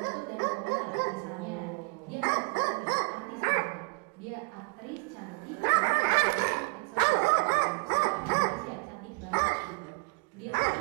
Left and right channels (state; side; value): quieter; left; 31.5 dB